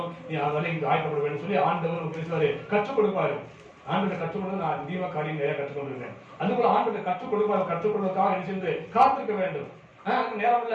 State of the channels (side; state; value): both; identical; correlation 1.00